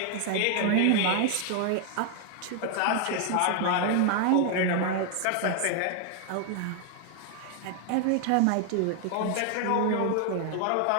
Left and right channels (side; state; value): both; different; correlation 0.00